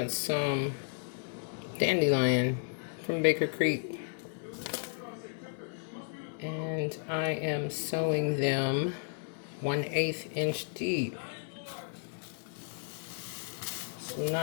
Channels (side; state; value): right; silent; digital silence